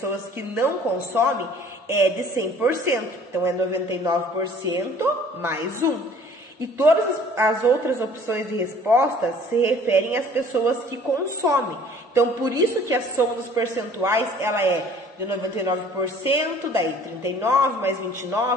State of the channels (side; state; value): both; normal; correlation 0.52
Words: que não consomem é de 100%. Então, é 99% mais 1. E todas as outras opções de resposta se referem às pessoas que consomem. Então, por isso que a soma dos percentuais, ela é de 99%, daí 39, mais